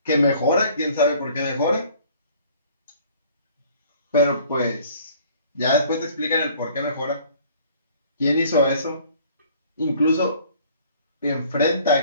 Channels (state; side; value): inverted; both; correlation -0.54